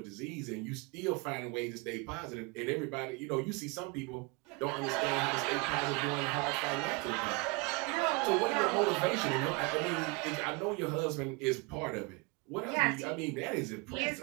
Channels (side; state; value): left; quieter; 29.1 dB